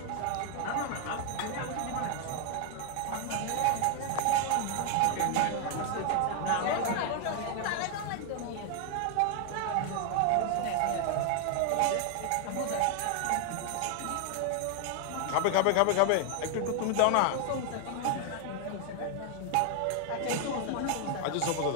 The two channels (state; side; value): different; both; correlation 0.00